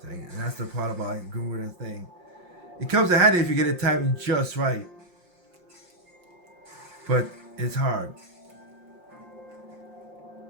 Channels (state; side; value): late; left; 5.6 ms